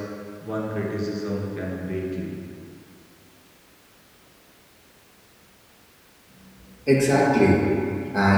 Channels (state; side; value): identical; both; correlation 1.00